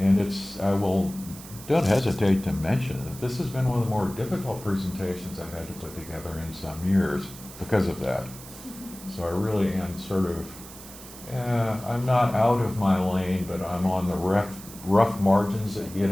don't hesitate to mention that this has been one of the more difficult presentations I've had to put together in some years because of that. So I really am sort of, I'm not out of my lane, but I'm on the rough margins that you get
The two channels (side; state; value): right; noise; hiss, 16 dB below the sound